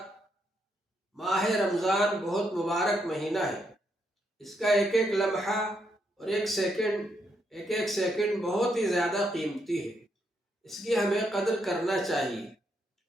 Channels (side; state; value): both; normal; correlation 0.78